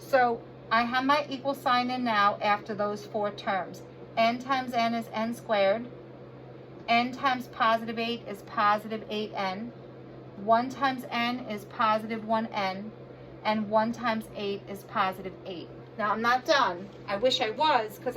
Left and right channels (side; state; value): both; identical; correlation 1.00